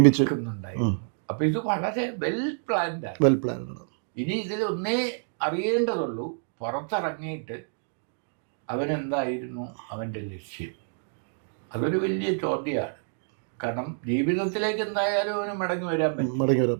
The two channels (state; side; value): silent; left; digital silence